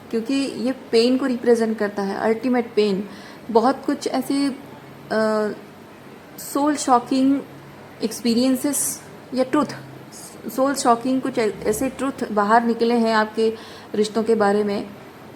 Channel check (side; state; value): both; identical; correlation 1.00